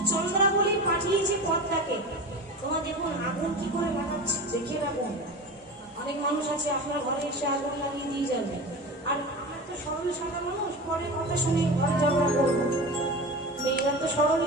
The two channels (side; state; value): both; normal; correlation 0.30